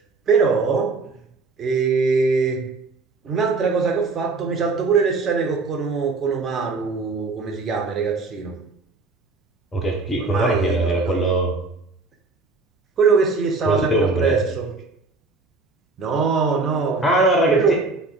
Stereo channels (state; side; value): quieter; left; 3.7 dB